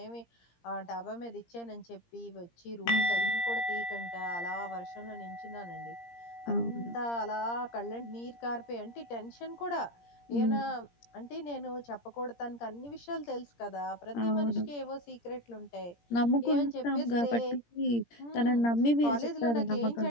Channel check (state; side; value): late; right; 17 ms